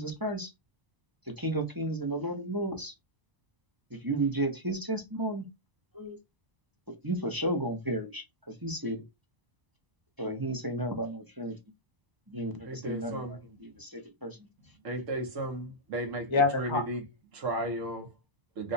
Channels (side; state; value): left; late; 1.0 ms